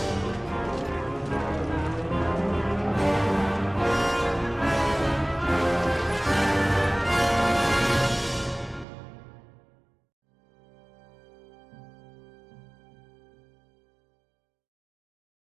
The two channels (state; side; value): drops out; left; at 8.8 s